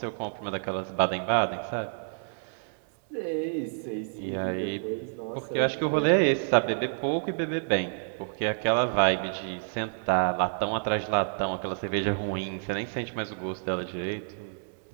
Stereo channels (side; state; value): left; silent; 59 dB below the other